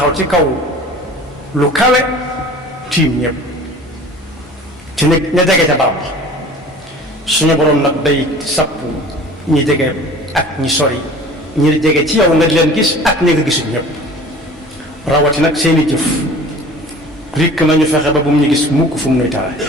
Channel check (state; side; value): normal; both; correlation 0.44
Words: ci kaw lu kawe tiim ñëpp ci ne ña jege ca barab suñu borom nag day sappu ñi jege ak ñi sori ñi jege ci yow nga di leen gis ak ñi nga gisul ñëpp rawati nag seeni jëf rikk nañu fexe ba bu mu ñu gis mukk fu mu nuy tare